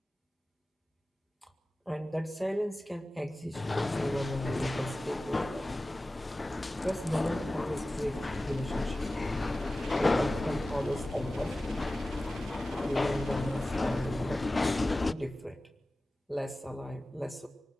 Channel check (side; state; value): both; normal; correlation 0.96